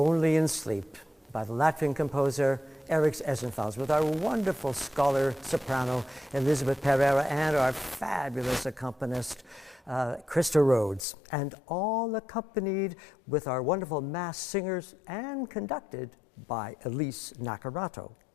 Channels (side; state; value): right; drops out; at 11.1 s